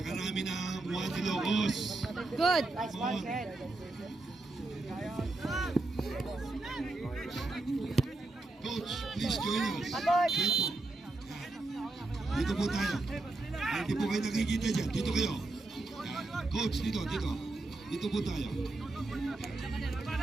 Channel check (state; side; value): quieter; left; 3.1 dB